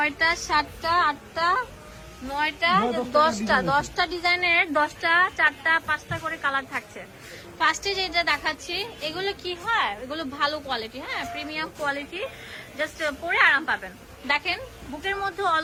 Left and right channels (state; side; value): identical; both; correlation 1.00